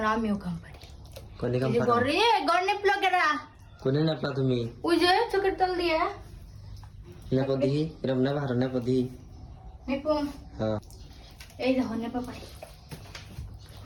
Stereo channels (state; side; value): identical; both; correlation 1.00